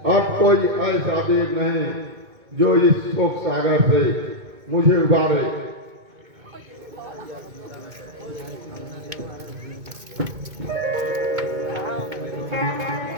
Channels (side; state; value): left; late; 2.2 ms